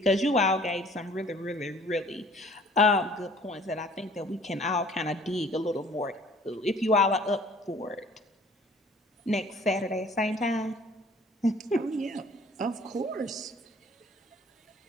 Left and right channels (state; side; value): normal; both; correlation 0.54